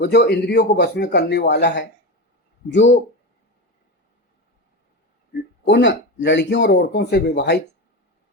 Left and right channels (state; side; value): normal; both; correlation 0.21